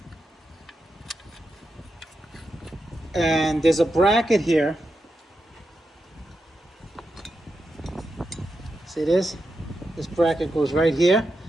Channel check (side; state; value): both; normal; correlation 0.87